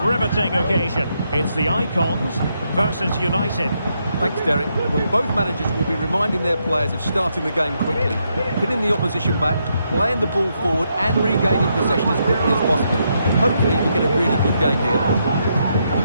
riveting occasion. It's the Icons versus United. Thanks, Derek. Well, both managers will be reminding their players of starting the game quickly, pinning the opposition back, playing the ball forward and regaining possession as quickly as possible. Hopefully we get a really good game here.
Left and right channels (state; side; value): inverted; both; correlation -0.79